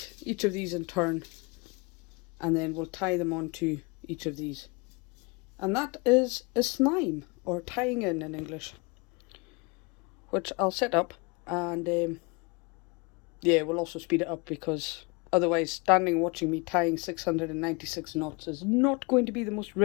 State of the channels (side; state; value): right; quieter; 28.7 dB